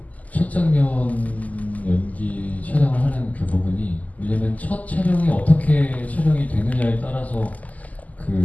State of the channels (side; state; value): right; late; 0.077 ms